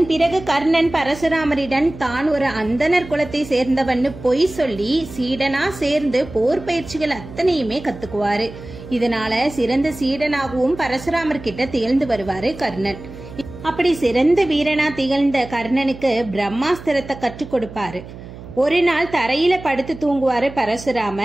பிறகு கர்ணன் பரசுராமரிடம் தான் ஒரு அந்தனர் குலத்தை சேர்ந்தவன்னு பொய் சொல்லி சீடனா சேர்ந்து போர் பயிற்சிகள் அத்தனையுமே கத்துக்குவாரு. இதனால சிறந்த சீடனாகவும் பரசுராமர் கிட்ட திகழ்ந்து வருவாரு கர்ணன். அப்படி சிறந்த வீரனா திகழ்ந்த கர்ணனுக்கு பிரம்மாஸ்திரத்தை கற்றுக் கொடுப்பாரு. ஒரு நாள் தரையில படுத்து தூங்குவாரு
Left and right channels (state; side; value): noise; right; hum, 15 dB below the sound